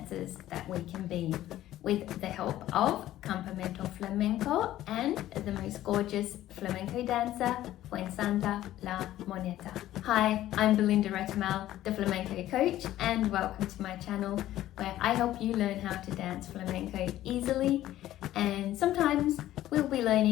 that we can be, with the help of Campamento Flamenco and the most gorgeous flamenco dancer, Fuensanta La Moneta. Hi, I'm Belinda Retamal, the flamenco coach, and welcome to my channel where I help you learn how to dance flamenco easily, and sometimes we'll be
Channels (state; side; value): quieter; right; 13.8 dB